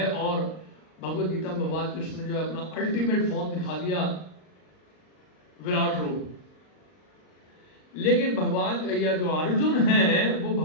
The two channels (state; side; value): late; right; 38 ms